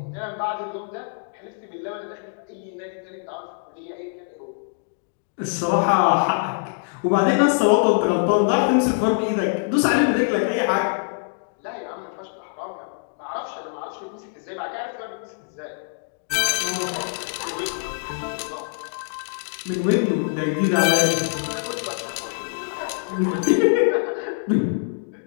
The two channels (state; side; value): silent; right; 62 dB below the other